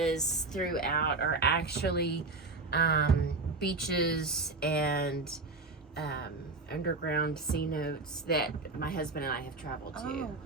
throughout are actually beaches and underground C notes that my husband and I have traveled to. Oh,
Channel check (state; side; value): quieter; left; 3.6 dB